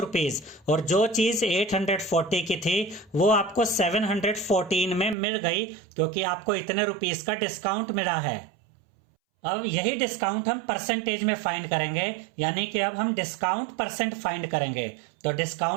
और जो चीज 840 की थी वो आपको 714 में मिल गई, क्योंकि आपको इतने रुपीस का डिस्काउंट मिला है। अब यही डिस्काउंट हम परसेंटेज में फाइंड करेंगे, यानी कि अब हम डिस्काउंट परसेंट फाइंड करेंगे। तो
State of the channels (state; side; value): drops out; left; at 5.2 s